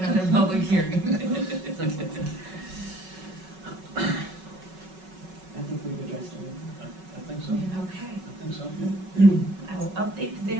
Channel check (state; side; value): late; left; 5.3 ms